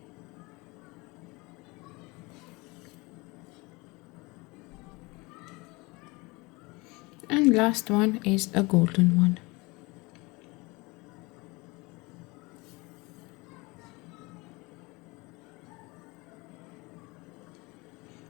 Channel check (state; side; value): quieter; right; 24.9 dB